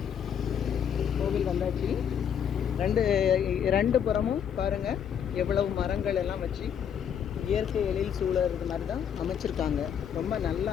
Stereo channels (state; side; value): quieter; right; 8.3 dB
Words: கோவில் வந்தாச்சு. ரெண்டு புறமும் பாருங்க எவ்வளவு மரங்கள் எல்லாம் வச்சு இயற்கை எழில் சூழறது மாதிரி தான் அமைச்சிருக்காங்க. ரொம்ப நல்லா